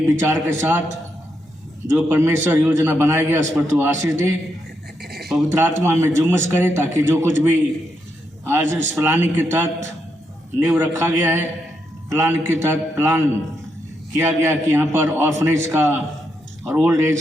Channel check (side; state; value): both; normal; correlation 0.81